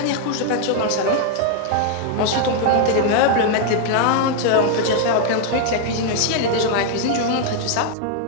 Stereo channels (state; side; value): different; both; correlation 0.00